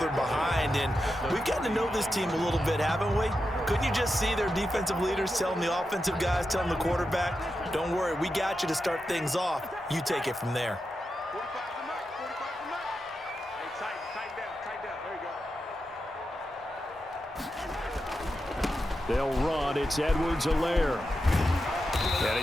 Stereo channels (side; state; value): both; normal; correlation 0.88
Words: behind. And we've gotten to know this team a little bit, haven't we? Couldn't you just see their defensive leaders telling the offensive guys, telling the quarterback, don't worry, we got you to start things off. You take it from there. They'll run. It's Edwards-Helaire. And